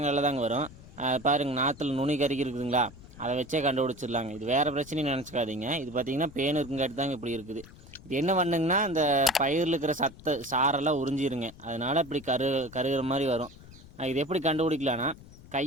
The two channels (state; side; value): noise; left; rumble, 19 dB below the sound